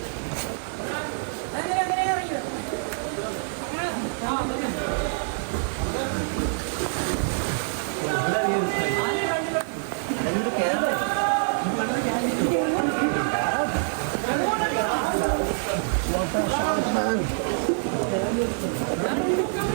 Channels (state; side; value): silent; left; 61 dB below the other